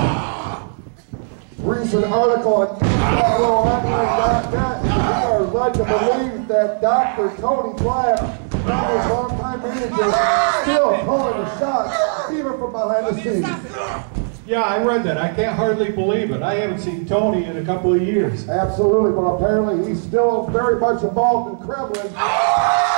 Recent article on MWOonline.net are led to believe that Dr. Tony Black, his longtime manager, still calling the shots, even from behind the scenes. Yeah, I read that. I can't hardly believe it. I haven't seen Tony in a couple of years. Absolutely, but apparently he's still very much involved in Kremlin.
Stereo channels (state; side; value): silent; left; digital silence